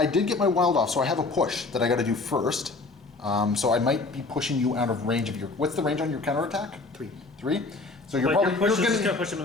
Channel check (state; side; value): quieter; right; 3.6 dB